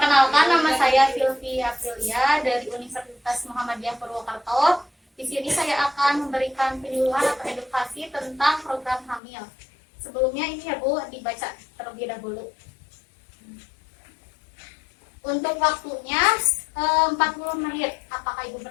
nama saya Sylvia Aprilia dari Universitas Muhammadiyah Purwokerto. Di sini saya akan memberikan penyuluhan atau edukasi tentang program hamil. Sebelumnya ini ya Bu, dibaca terlebih dahulu. Untuk waktunya 40 menit. Apakah Ibu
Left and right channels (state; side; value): drops out; right; at 9.2 s